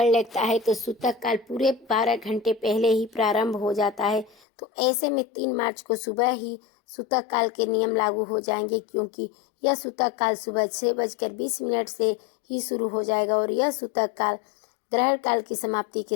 लगता है तो सूतक काल पूरे 12 घंटे पहले ही प्रारंभ हो जाता है। तो ऐसे में 3 मार्च को सुबह ही सूतक काल के नियम लागू हो जाएंगे, क्योंकि यह सूतक काल सुबह 6:20 से ही शुरू हो जाएगा और यह सूतक काल ग्रहण काल की समाप्ति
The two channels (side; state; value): right; drops out; at 4.4 s